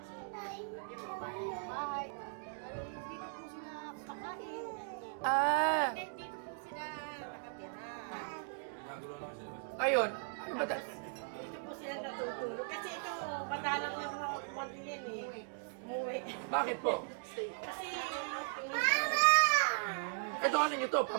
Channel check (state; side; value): silent; left; digital silence